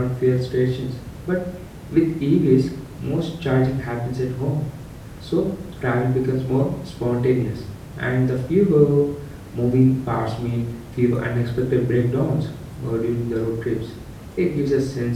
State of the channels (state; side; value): identical; both; correlation 1.00